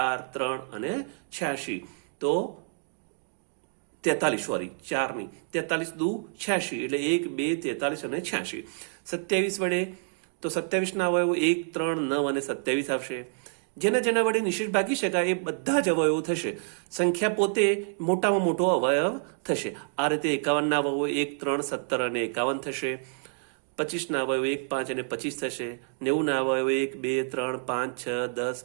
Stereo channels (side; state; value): left; silent; 59 dB below the other